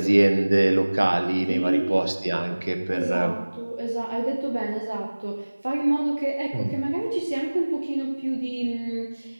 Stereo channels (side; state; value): both; inverted; correlation -1.00